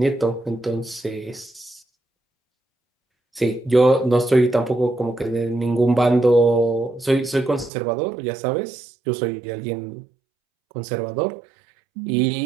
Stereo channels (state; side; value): drops out; left; at 7.7 s